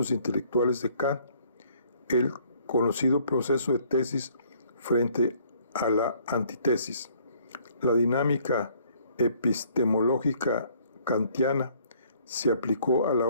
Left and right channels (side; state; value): both; inverted; correlation -0.61